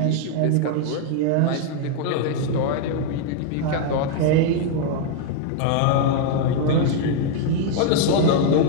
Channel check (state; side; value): different; both; correlation 0.00